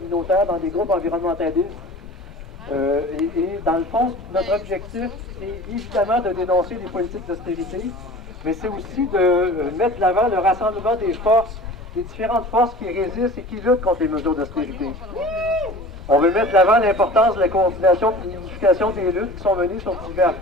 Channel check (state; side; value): normal; both; correlation 0.40